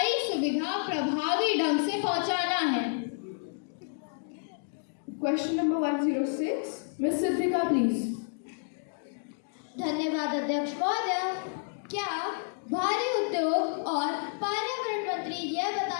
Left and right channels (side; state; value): right; silent; digital silence